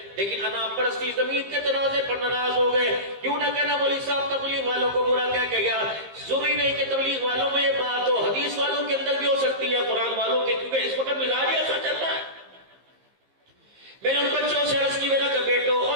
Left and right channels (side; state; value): left; late; 15 ms